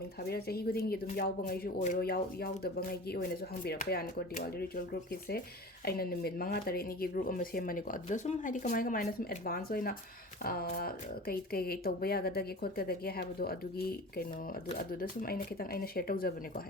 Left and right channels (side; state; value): both; normal; correlation 0.36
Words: thabira chahi guding gi dum yaw bangai ju oiro yaw da bangai gi oina ju hangbira pa ya ni ko diwali ritual group ki se aina numit manga tare ni gi group amma se mani ko aduda sum haidi kamai na sum advance oina kai tauba yagadage khotgadage habado adugi kaino aduda sum aina kitang aina share tawjabane ko